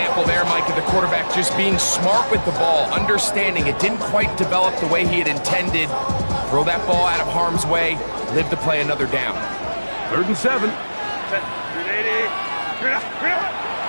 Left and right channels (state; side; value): inverted; both; correlation -1.00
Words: there, Mike, of the quarterback just being smart with the ball, understanding it didn't quite develop the way he had intended. Throw that ball out of harm's way, live to play another down. 3rd and 7.